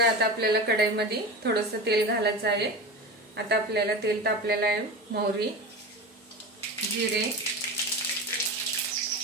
आता आपल्याला कढईमध्ये थोडंसं तेल घालायचं आहे। आता आपल्याला तेल तापलेलं आहे, मोहरी, जिरे,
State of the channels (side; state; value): both; normal; correlation 0.27